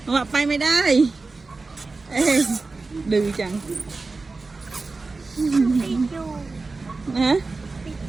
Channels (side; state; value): left; quieter; 3.8 dB